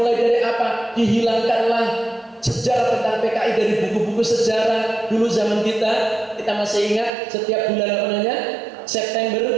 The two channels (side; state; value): left; drops out; at 7.1 s